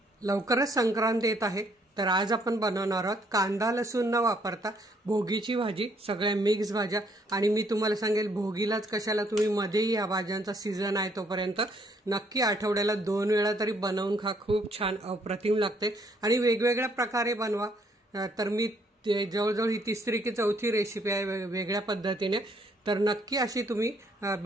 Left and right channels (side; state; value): both; normal; correlation 0.67